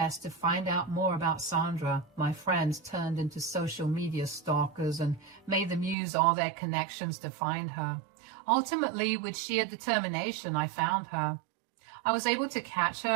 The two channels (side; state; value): left; drops out; at 6.0 s